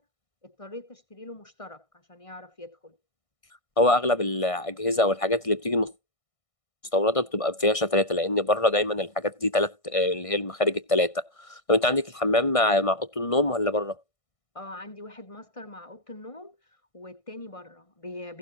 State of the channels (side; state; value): right; late; 1.6 ms